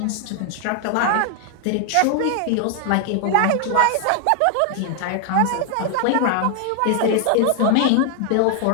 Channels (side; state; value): both; different; correlation 0.00